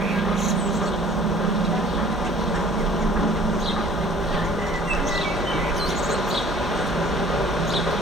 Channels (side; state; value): both; normal; correlation 0.52